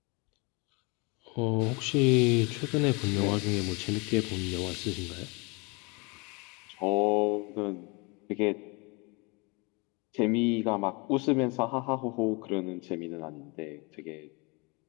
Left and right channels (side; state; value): right; quieter; 29.2 dB